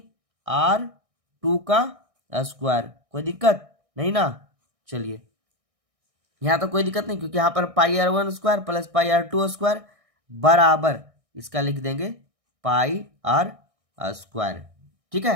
R2 का स्क्वायर। कोई दिक्कत नहीं ना। चलिए यहाँ तो कोई दिक्कत नहीं, क्योंकि यहाँ पर पाई R1 square plus pi R2 square बराबर इसका लिख देंगे पाई R स्क्वायर, ठीक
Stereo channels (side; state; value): left; late; 1.6 ms